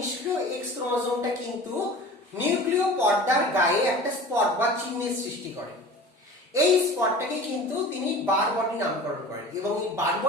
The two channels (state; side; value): normal; both; correlation 0.39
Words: এক্স ক্রোমোজোমটা কিন্তু নিউক্লিয় পর্দার গায়ে একটা স্পট বা চিহ্নের সৃষ্টি করে। এই স্পটটাকে কিন্তু তিনি বার বডি নামকরণ করেন এবং এই বার